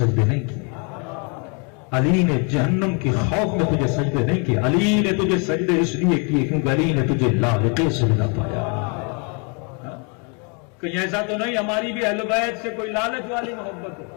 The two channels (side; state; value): right; quieter; 35.6 dB